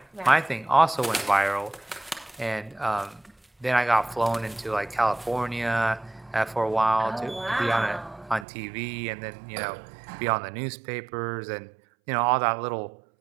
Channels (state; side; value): drops out; left; at 8.5 s